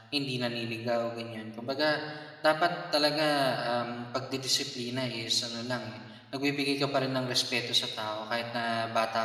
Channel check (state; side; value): identical; both; correlation 1.00